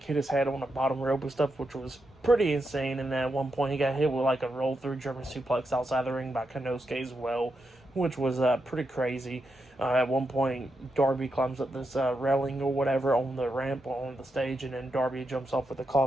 his head on the bottom rope and stuff, which was pretty insane, and then at one point he got hit with, a roll-through German suplex outside the ring by Konosuke as well, which was pretty crazy. At one point, Darby climbs up this railing or whatever on the ramp on the stage, and then Darby jumps off with a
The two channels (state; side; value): normal; both; correlation 0.85